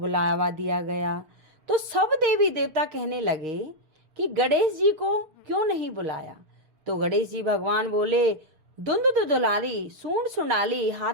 दिया गया। तो सब देवी देवता कहने लगे कि गणेश जी को क्यों नहीं बुलाया। तो गणेश जी भगवान बोले, धुंध दुलारी, सूंड सुंडाली,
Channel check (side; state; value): left; late; 6.8 ms